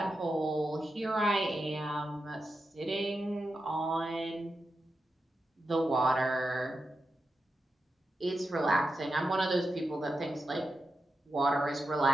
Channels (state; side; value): normal; both; correlation 0.89